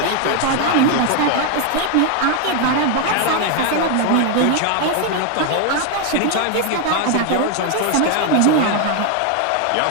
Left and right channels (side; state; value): both; different; correlation 0.01